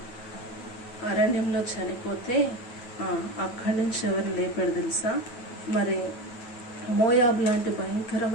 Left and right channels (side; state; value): right; late; 9.2 ms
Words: అరణ్యంలో చనిపోతే అక్కడి నుంచి ఎవరిని లేపాడు తెలుసా, మరి మోయాబు లాంటి